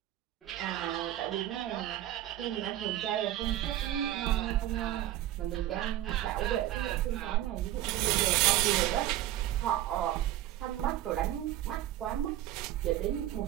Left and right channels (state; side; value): quieter; left; 13.7 dB